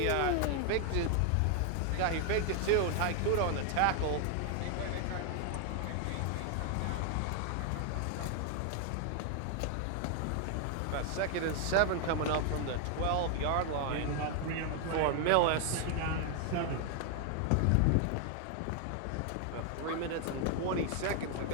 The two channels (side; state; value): both; different; correlation 0.00